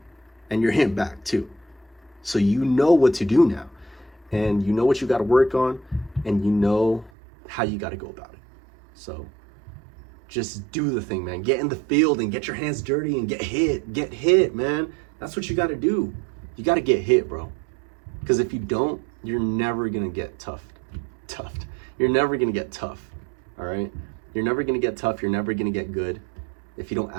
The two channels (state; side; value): drops out; left; at 7.1 s